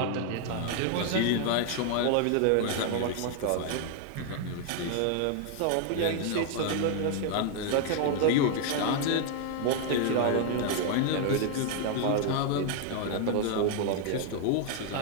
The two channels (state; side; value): different; both; correlation 0.00